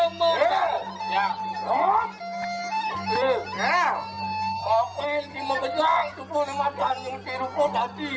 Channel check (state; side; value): identical; both; correlation 1.00